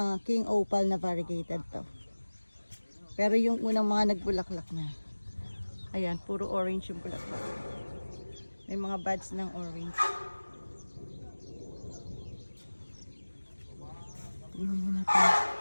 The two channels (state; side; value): inverted; both; correlation -1.00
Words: king opal na variegated to. Pero yung unang mga nagbulaklak na. Ayan, puro orange yung bulaklak. May mga buds ng orange. Tingnan mo natin.